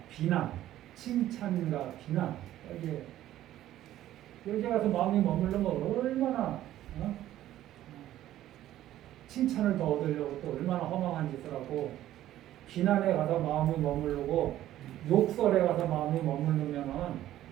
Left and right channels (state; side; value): quieter; left; 13.3 dB